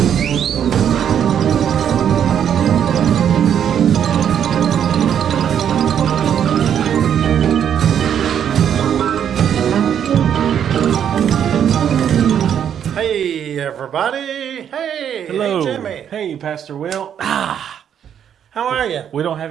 Hey, everybody. Hey. Hello. Hey, Jimmy. Hey, Pastor Will. How are you? We don't have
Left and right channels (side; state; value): left; quieter; 9.0 dB